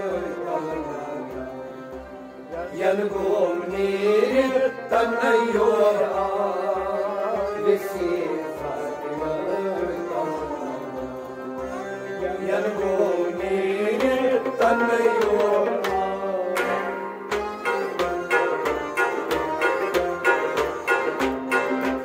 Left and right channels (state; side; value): identical; both; correlation 1.00